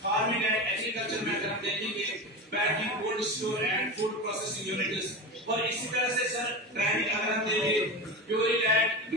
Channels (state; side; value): normal; both; correlation 0.24